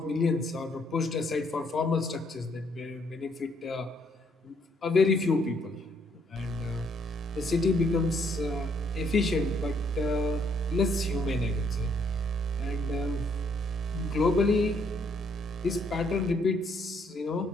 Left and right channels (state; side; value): normal; both; correlation 0.69